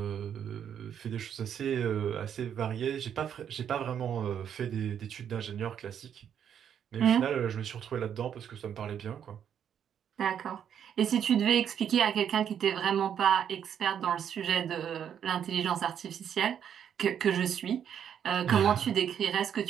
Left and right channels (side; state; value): left; quieter; 8.8 dB